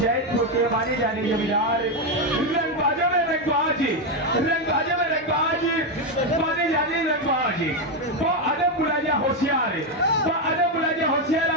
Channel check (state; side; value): normal; both; correlation 0.07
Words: के माने जाने जमींदार रंगबाजों में रंगबाज माने जाने रंगबाज वो अदब बुलाया होशियार